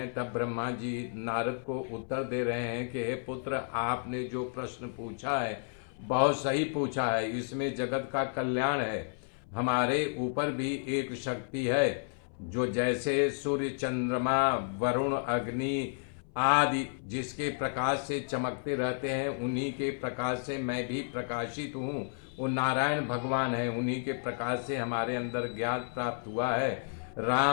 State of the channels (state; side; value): silent; right; 57 dB below the other